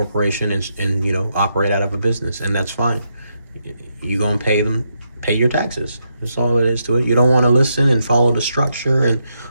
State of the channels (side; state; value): both; inverted; correlation -0.81